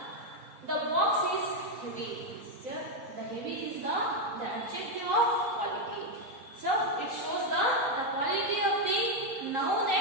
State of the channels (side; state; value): left; late; 3.9 ms